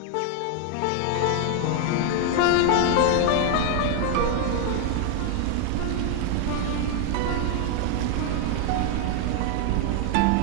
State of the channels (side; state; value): both; different; correlation 0.00